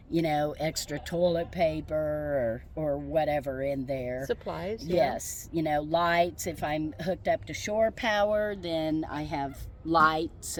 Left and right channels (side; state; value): both; identical; correlation 1.00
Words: you know, extra toilet paper or whatever in there. Supplies. Yes, you know, lights. If I'm hooked up to shore power, then I have lights